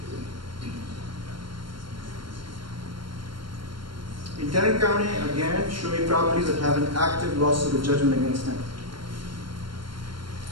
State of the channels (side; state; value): left; late; 0.72 ms